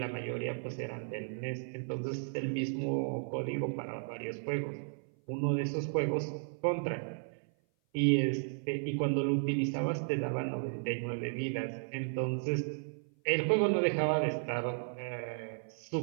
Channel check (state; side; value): silent; left; 55 dB below the other